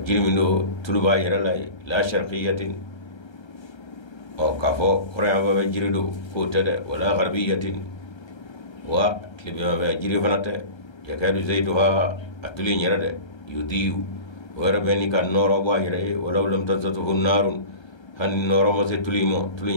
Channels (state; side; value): late; right; 1.3 ms